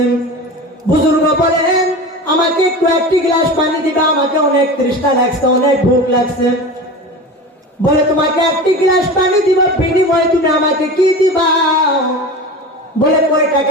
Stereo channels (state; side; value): normal; both; correlation 0.31